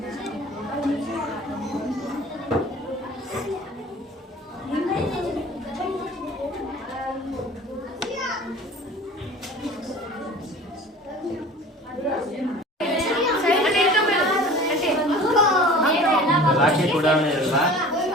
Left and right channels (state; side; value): normal; both; correlation 0.42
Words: ರಾಕೆಟ್ ಉಡಾವಣೆ ಇರಲ್ಲ,